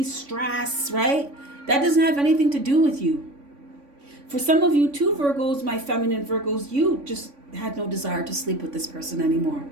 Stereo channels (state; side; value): late; left; 3.5 ms